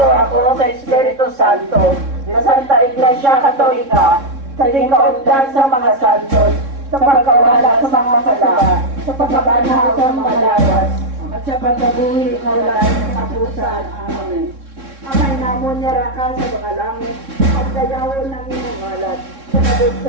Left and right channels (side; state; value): left; late; 3.6 ms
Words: ako sa Espiritu Santo, sa Santa Iglesia Katolika, sa tingkaundan sa mga santos, sa pagkawala sa mga sala, sa pagkabanaw sa mga lawas, at sa pagkabuhi na wala ng kapusan. Amen. Amay namon niya raka sa mga langit, at dayawon ng imong alat, sa